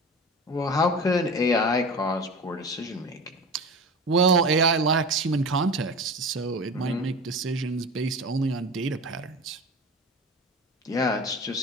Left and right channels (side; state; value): both; normal; correlation 0.32